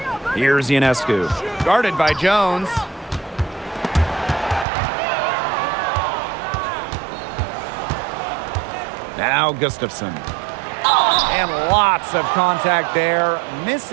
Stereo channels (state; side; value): drops out; left; at 4.7 s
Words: Here's Ionescu. Guarded by Jones. Now Gustafson. And lots of contact there.